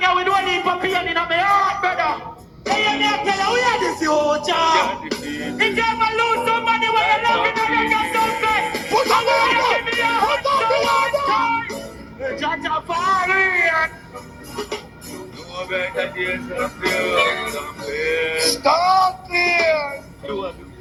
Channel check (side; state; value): both; identical; correlation 1.00